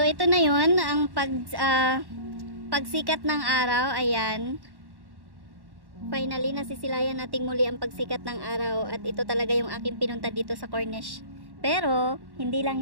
ito na yun. Ang pagsikat ng araw. Ayan. Finally, nasisilayan nating muli ang pagsikat ng araw. At ito talaga yung aking pinunta dito sa Cornish. Pero, hindi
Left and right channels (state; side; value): late; left; 1.1 ms